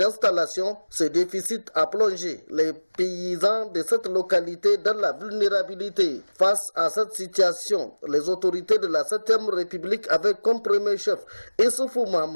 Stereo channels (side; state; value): both; inverted; correlation -1.00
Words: ce déficit a plongé les paysans de cette localité dans la vulnérabilité. Face à cette situation, les autorités de la 7e République avec comme premier chef Issoufou